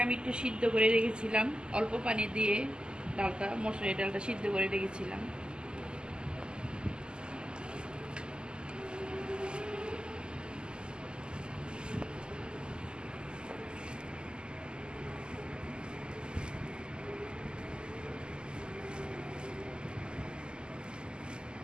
আমি একটু সিদ্ধ করে রেখেছিলাম অল্প পানি দিয়ে। মসুরের ডালটা সিদ্ধ করে রেখেছিলাম।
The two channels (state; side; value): late; left; 0.048 ms